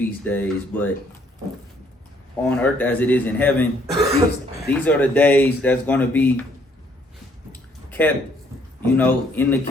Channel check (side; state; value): both; normal; correlation 0.66